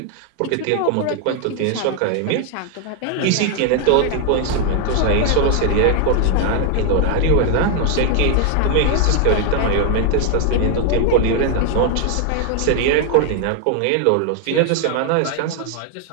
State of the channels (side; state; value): both; different; correlation 0.00